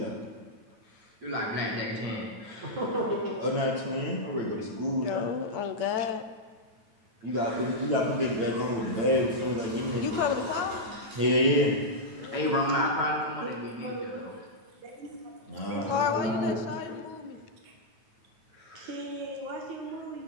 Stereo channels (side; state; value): left; late; 9.2 ms